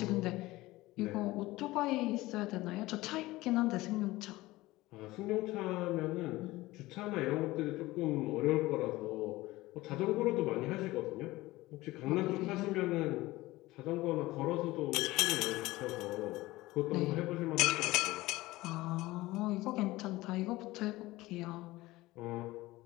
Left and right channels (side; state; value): right; quieter; 18.8 dB